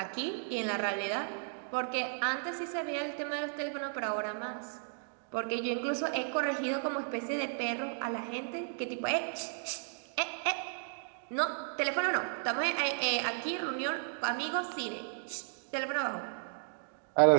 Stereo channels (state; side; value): silent; left; digital silence